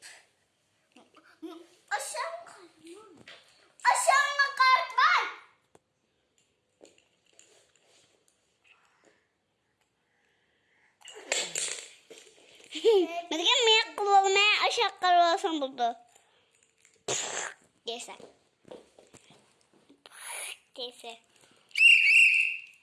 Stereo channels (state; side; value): identical; both; correlation 1.00